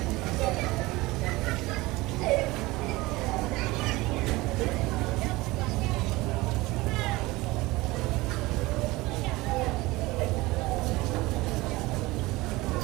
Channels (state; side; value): quieter; left; 20.8 dB